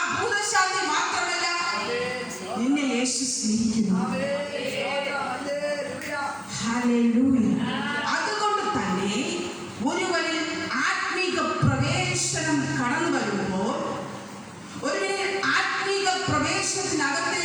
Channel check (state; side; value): identical; both; correlation 1.00